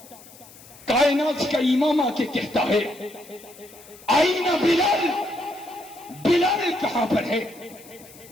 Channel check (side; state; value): left; noise; hiss, 21 dB below the sound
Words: کائنات کا امام آ کے کہتا ہے آئین بلال، بلال کہاں پر ہے؟